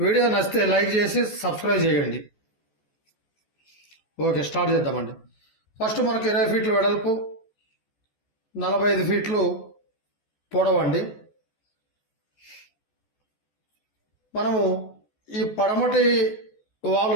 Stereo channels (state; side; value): late; right; 14 ms